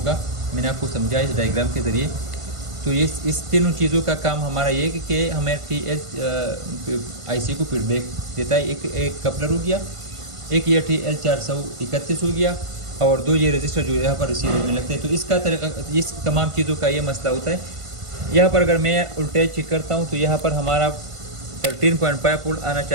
मैंने आपको समझाया इस डायग्राम के ज़रिए। तो इस तीनों चीज़ों का काम हमारा ये कि हमें IC को फीडबैक देता है। एक कपलर हो गया, एक ये TL431 हो गया, और 2 ये रजिस्टर जो यहाँ पर रिसीवर में लगते हैं। तो इसका तरीका, इस तमाम चीज़ों का ये मसला होता है। यहाँ पर अगर मैं वोल्टेज चेक करता हूँ तो यहाँ पर हमारा 13.5 वोल्ट आना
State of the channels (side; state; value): left; late; 1.5 ms